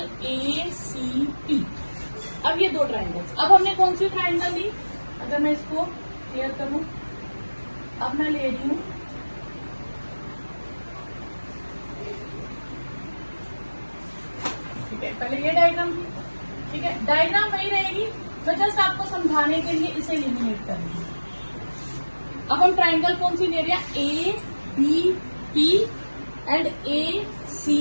ACP। अब ये दो ट्राइंगल्स, अब हमने कौन सी ट्राइंगल ली, अगर मैं इसको क्लियर करूं, अब मैं ले रही हूं ठीक है, पहले ये डायग्राम थी। ठीक है, डायग्राम वही रहेगी, मैं जस्ट आपको समझाने के लिए इसे एलिमिनेट करूंगी। अब हम ट्राइंगल कौन सी ले रहे हैं, ABP एंड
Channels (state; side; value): inverted; both; correlation -1.00